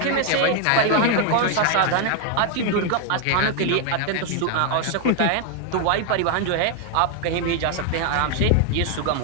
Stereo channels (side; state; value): both; different; correlation 0.00